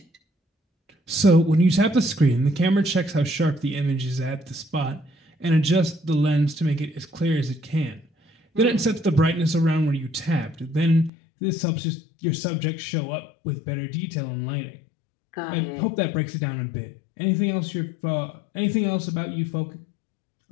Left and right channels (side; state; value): right; drops out; at 11.1 s